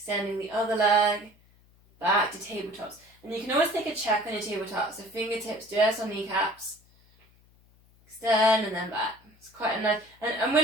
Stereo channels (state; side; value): noise; left; hum, 30 dB below the sound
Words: the other leg, back to tabletops. And you can always take a check on your tabletops, so fingertips just on kneecaps, extend and then back. It's quite a nice, and